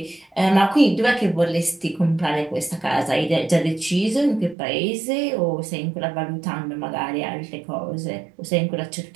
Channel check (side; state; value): left; drops out; at 4.5 s